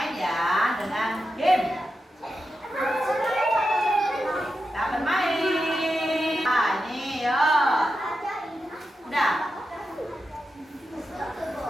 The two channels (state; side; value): normal; both; correlation 0.89